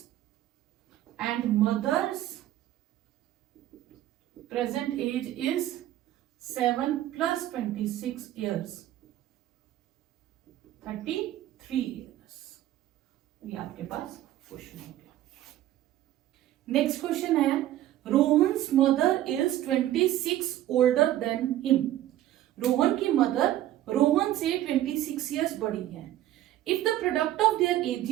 and mother's present age is 7 plus 26 years, 33 years। ये आपके पास क्वेश्चन हो गया। नेक्स्ट क्वेश्चन है, Rohan's mother is 26 older than him. Rohan की मदर रोहन से 26 ईयर्स बड़ी है। If the product of their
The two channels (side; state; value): left; quieter; 13.5 dB